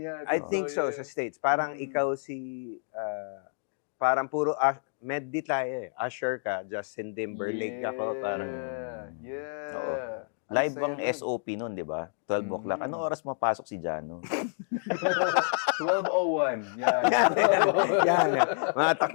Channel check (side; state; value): right; silent; digital silence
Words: I think so, yeah. sa States. Parang ikaw parang puro medley tayo eh. Usher ka, Justin Timberlake ako. Parang, Yeah. Ang Live saya bang nun. SOP nun, di ba? 12 o'clock. Anong oras mapasok si Jano? 12:01. Yan. yan.